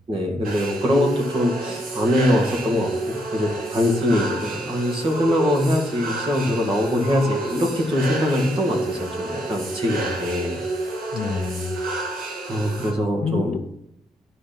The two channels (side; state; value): both; normal; correlation 0.75